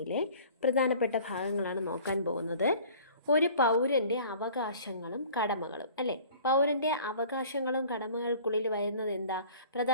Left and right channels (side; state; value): both; inverted; correlation -0.48